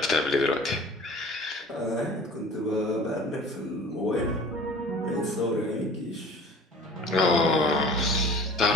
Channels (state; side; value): normal; both; correlation 0.44